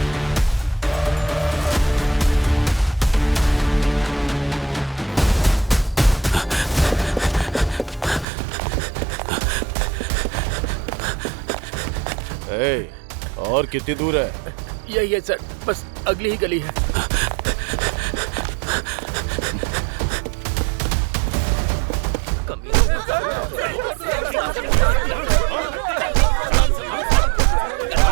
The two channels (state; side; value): drops out; left; at 8.2 s